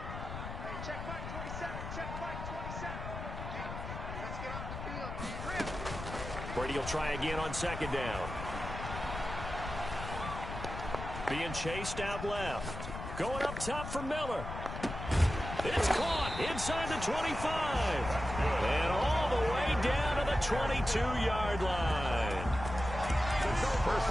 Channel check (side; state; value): left; noise; rumble, 7 dB below the sound